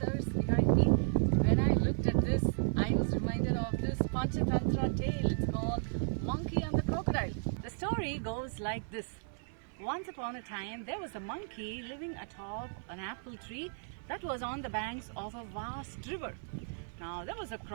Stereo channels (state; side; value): silent; left; digital silence